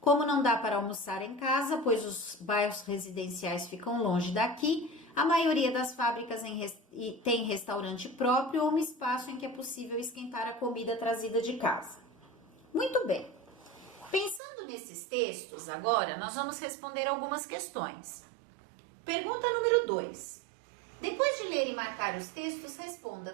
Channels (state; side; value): drops out; left; at 14.4 s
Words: não dá para almoçar em casa, pois os bairros residenciais ficam longe daqui, a maioria das fábricas tem restaurante próprio ou um espaço em que é possível esquentar a comida trazida de casa. Muito bem. Pensando nesses textos, agora nós vamos responder algumas questões. Pergunta número 2. Depois de ler e marcar os textos, responda: